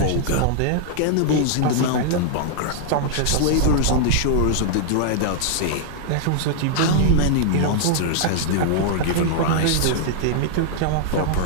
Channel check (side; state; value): both; different; correlation -0.01